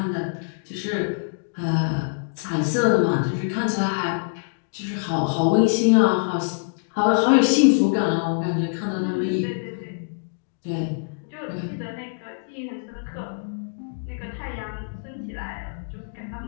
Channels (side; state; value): right; silent; digital silence